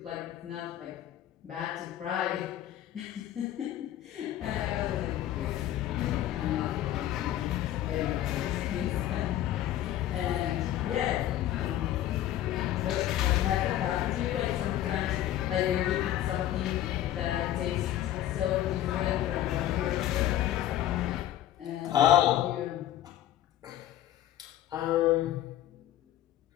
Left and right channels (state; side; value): quieter; right; 12.7 dB